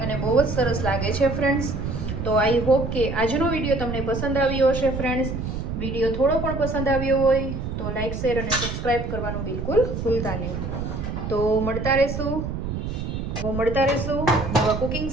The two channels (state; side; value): noise; right; rumble, 4 dB below the sound